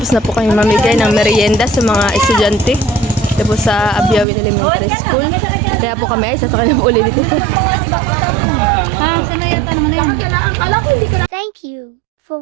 na po kami mamigay ng merienda sa mga estudyante. Ito po sa Abiawin Elementary School. Kaya po kami ay sasakay na po ulit dito. Sanayata naman na yan. Thank you for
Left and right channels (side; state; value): left; drops out; at 4.2 s